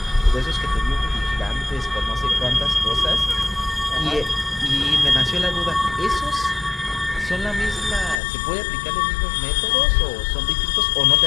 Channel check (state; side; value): drops out; right; at 8.2 s